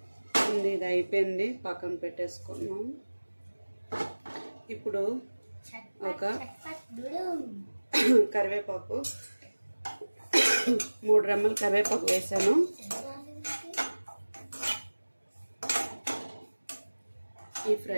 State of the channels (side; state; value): both; inverted; correlation -1.00